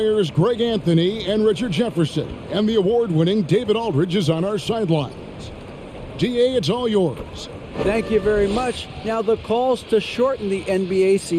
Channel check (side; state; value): both; identical; correlation 1.00